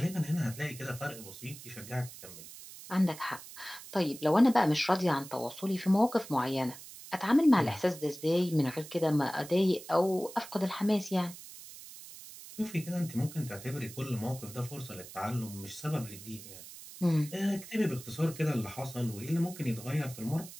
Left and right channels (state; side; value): noise; right; hiss, 15 dB below the sound